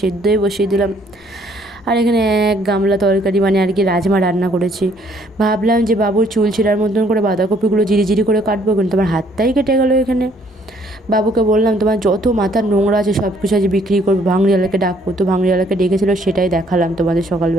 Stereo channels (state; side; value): normal; both; correlation 0.64